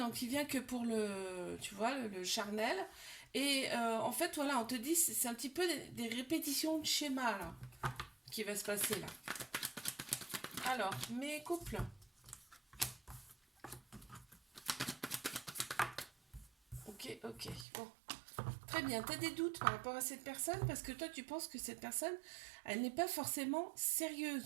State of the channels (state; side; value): drops out; left; at 17.7 s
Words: il vient que pour le, tu vois, le charnel. Et en fait, voilà, on te dit, c'est un petit peu des répétitions de schéma, là, qui va se passer, là. Alors, mes couples. Ok, ok, bon. Très bien, t'as des doutes par rapport à cette personne parce que toi, tu penses que cette personne, elle n'est pas forcément